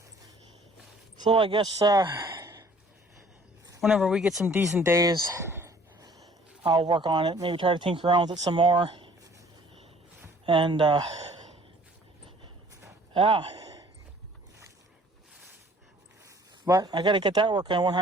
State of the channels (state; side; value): normal; both; correlation 0.55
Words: So I guess, whenever we get some decent days, I'll work on it. Maybe try to tinker around with it some more. And, yeah. But I gotta get that working